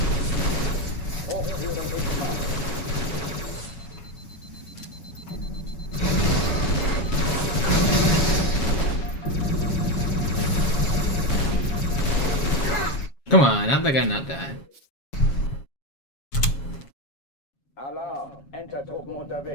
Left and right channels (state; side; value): late; right; 7.3 ms